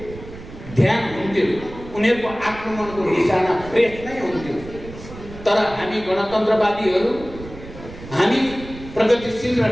ध्यान हुन्थ्यो। उनीहरूको आक्रमणको निशाना प्रेस नै हुन्थ्यो। तर हामी गणतन्त्रवादीहरू, हामी प्रगतिशील र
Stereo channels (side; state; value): right; noise; rumble, 15 dB below the sound